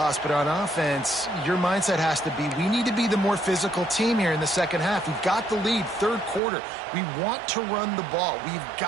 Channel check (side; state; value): left; drops out; at 6.4 s